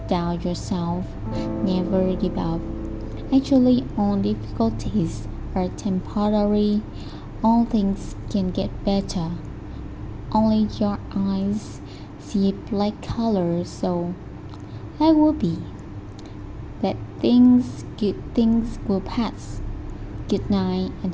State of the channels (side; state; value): both; identical; correlation 1.00